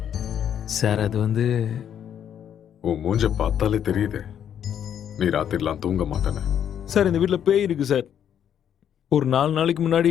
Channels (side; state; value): right; quieter; 9.3 dB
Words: சார் அது வந்து உன் மூஞ்ச பார்த்தாலே தெரியுது நீ ராத்திரிலாம் தூங்க மாட்டேன்னு. சார் இந்த வீட்டில் பேய் இருக்கு சார். ஒரு 4 நாளைக்கு